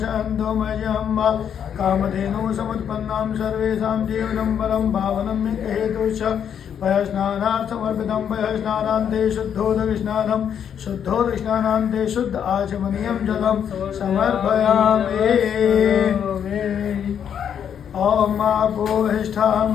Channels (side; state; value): right; quieter; 8.4 dB